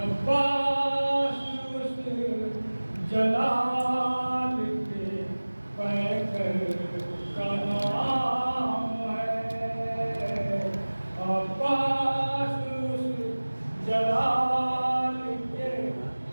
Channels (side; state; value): both; inverted; correlation -1.00